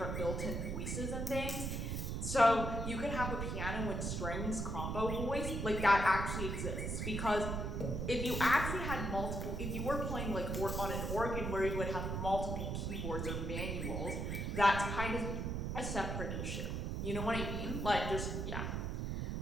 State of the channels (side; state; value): right; noise; rumble, 2 dB below the sound